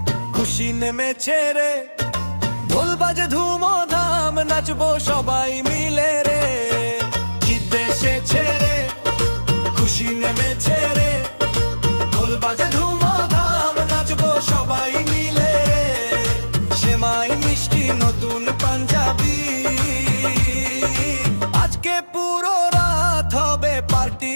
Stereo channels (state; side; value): inverted; both; correlation -1.00